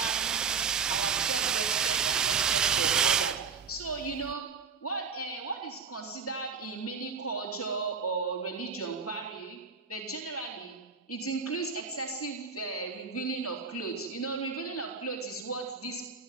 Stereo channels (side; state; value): left; quieter; 5.7 dB